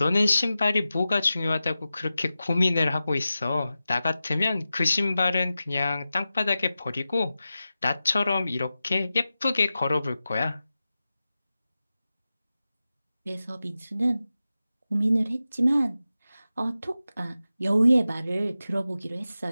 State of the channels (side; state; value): both; inverted; correlation -0.94